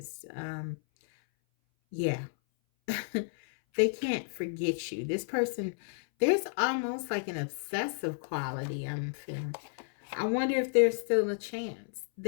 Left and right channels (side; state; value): right; silent; 56 dB below the other